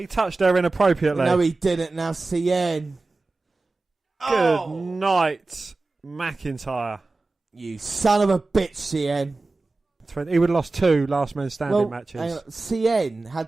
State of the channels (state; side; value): quieter; left; 3.4 dB